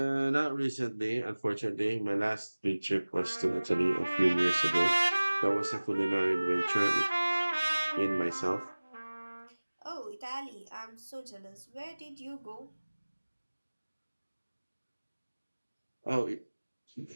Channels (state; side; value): inverted; both; correlation -1.00